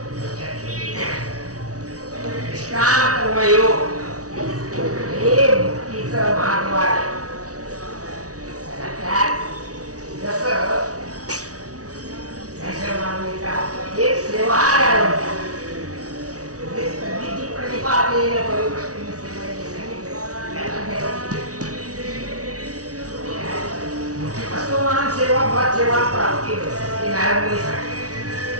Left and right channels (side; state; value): left; late; 0.67 ms